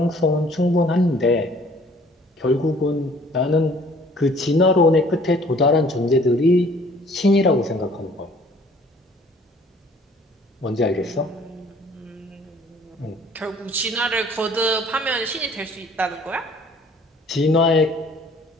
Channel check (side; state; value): both; normal; correlation 0.55